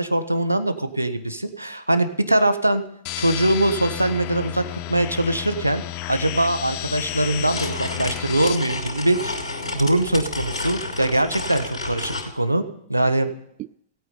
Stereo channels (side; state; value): both; inverted; correlation -0.82